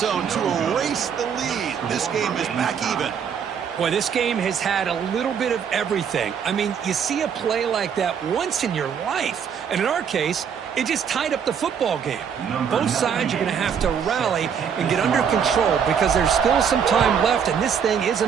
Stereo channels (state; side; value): quieter; left; 7.4 dB